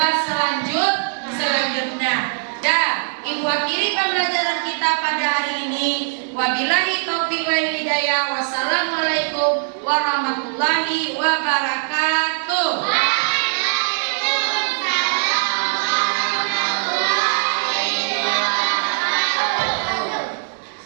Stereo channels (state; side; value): silent; left; 65 dB below the other